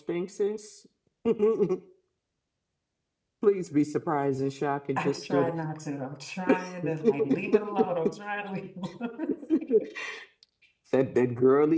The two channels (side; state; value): both; identical; correlation 1.00